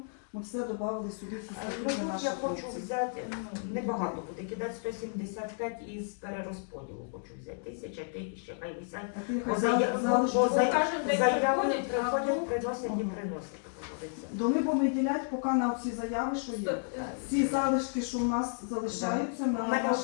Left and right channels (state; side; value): silent; right; digital silence